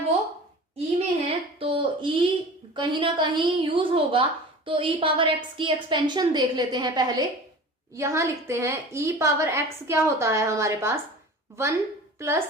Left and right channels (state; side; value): normal; both; correlation 0.38